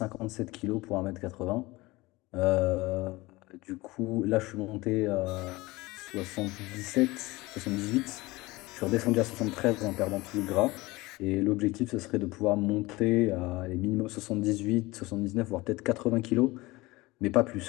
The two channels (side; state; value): right; quieter; 21.2 dB